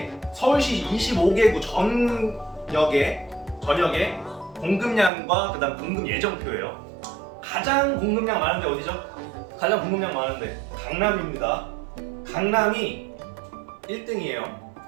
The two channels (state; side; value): drops out; left; at 5.1 s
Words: 서울시 25개구 전역의 공급량과 그다음 공급 예정표예요. 가장 공급량 많은 데 어디죠? 가장 공급량 많은 데 강남입니다. 강남이 1등이에요.